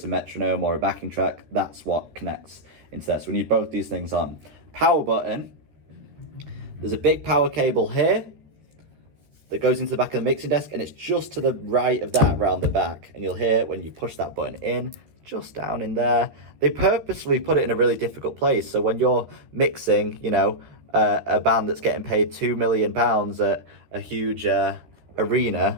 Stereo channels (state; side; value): late; left; 14 ms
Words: a metronome or a backing track. That's what connects into there. So we need both these things on. Power button. There's a big power cable here that goes into the back of the mixing desk, and it's just to the right of that round the back. And you'll hear when you push that button in, just down in there. They purposely put it in a really difficult place. So when you're mixing, you know, a band that's getting paid £2 million at a huge arena,